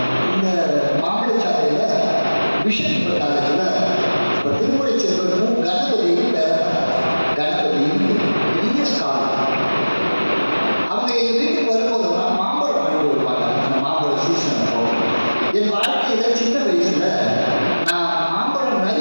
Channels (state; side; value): inverted; both; correlation -1.00